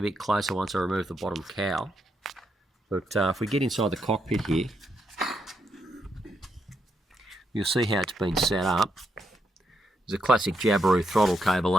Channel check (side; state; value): both; normal; correlation 0.80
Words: bit closer once I remove the bottom cowl. But if we get inside the cockpit here, you'll see how it's been set up. There's a classic Jabiru throttle cable